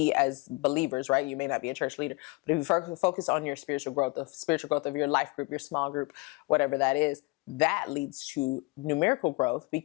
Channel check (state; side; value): quieter; right; 25.9 dB